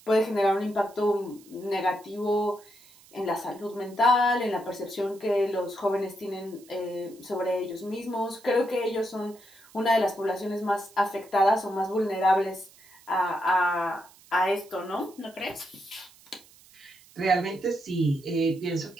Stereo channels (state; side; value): noise; right; hiss, 25 dB below the sound